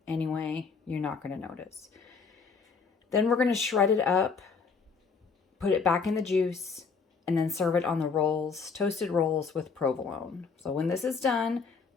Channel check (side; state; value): right; quieter; 5.2 dB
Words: anyway, you're not going to notice. Then we're going to shred it up, put it back in the juice, and then serve it on the rolls, toasted rolls with provolone. So when this is done,